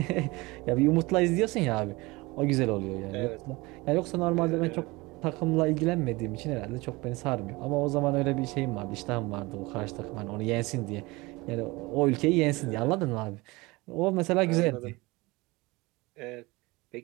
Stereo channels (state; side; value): quieter; left; 23.0 dB